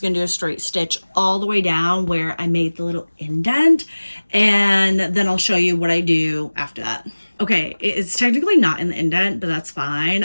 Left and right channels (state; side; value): inverted; both; correlation -1.00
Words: gonna do a straight stitch all the way down where I made the little indent, and then I'll show you what I do after that. Okay, it's technically not in the indent, but that's fine.